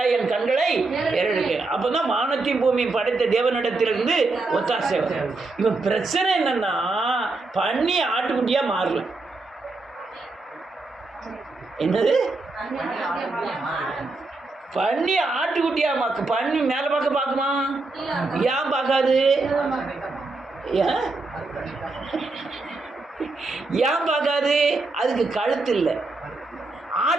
என் கண்களை ஏறெடுக்க. அப்போ தான் வானத்தையும் பூமியும் படைத்த தேவனிடத்திலிருந்து ஒத்தாசை வரும். இவன் பிரச்சனை என்னன்னா, பண்ணி ஆட்டுக்குட்டியாக மாறல. என்னது? பண்ணி ஆட்டுக்குட்டியா மாக்கு. பண்ணி மேலே பார்க்குமா? ஏன் பார்க்காது? ஏன் பார்க்காது? அதுக்கு கழுத்து இல்லை.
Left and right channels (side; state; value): left; quieter; 3.5 dB